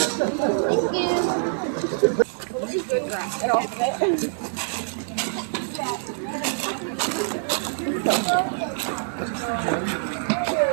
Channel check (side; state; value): left; silent; digital silence